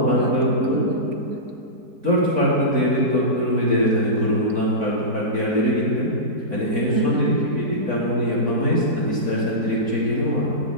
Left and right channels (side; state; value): left; late; 4.6 ms